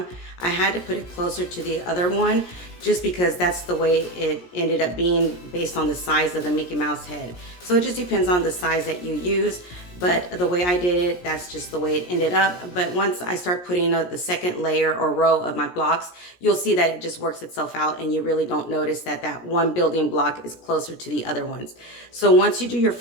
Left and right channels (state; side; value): late; right; 17 ms